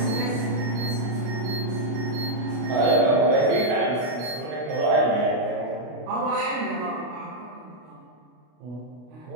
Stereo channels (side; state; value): left; late; 33 ms